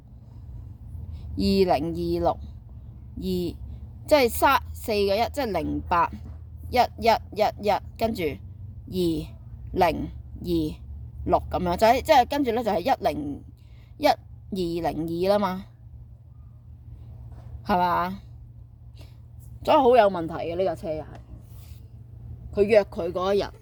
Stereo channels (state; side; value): identical; both; correlation 1.00